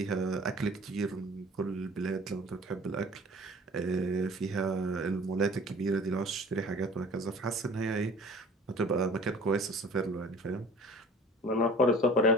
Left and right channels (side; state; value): both; normal; correlation 0.46